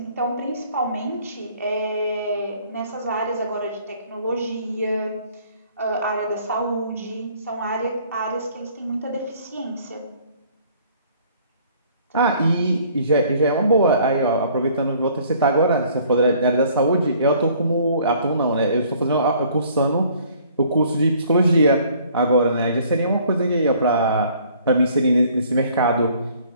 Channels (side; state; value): both; inverted; correlation -0.58